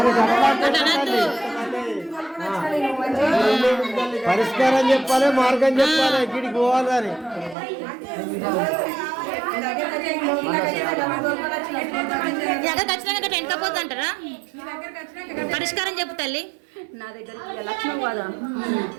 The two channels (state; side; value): drops out; left; at 7.6 s